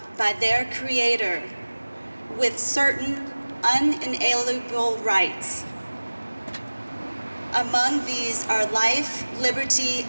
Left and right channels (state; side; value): inverted; both; correlation -1.00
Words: by their Creator with certain unalienable rights. Among these are life, liberty,